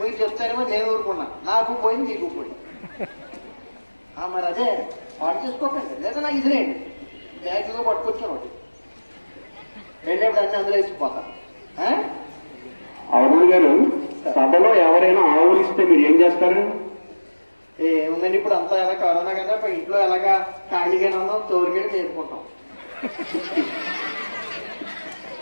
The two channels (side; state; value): both; inverted; correlation -1.00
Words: చెప్తారేమో నేను ఊరుకున్నా, నాకు పోయింది మీకు పోయింది. మరి అదే పాటు చేసుకోకండి, లేదా నాకు ఇదిలేండి. బ్యాగ్లో పట్టుకొచ్చాను ఒకటి, వెళ్ళేప్పుడు అన్ని అందులో వేసిపోతాను. అరుణ్ గారు, సభలో ఎవరైనా ఆవులు ఇస్తే మీరు ఏం చేస్తారు? ఏముందండి, ఇప్పుడు అంతా ఎలా కరోనా కదా, ఇంట్లో ఎలాగా ఖాళీగానే ఉన్నాం, తోరుగడి చేసుకుంటాం.